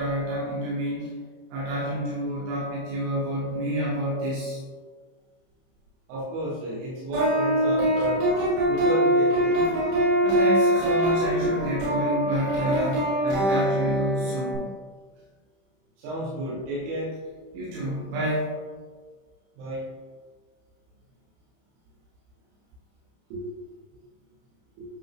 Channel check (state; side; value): late; left; 31 ms